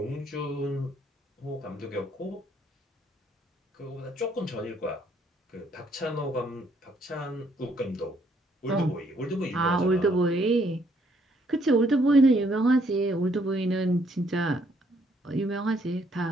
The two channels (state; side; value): normal; both; correlation 0.68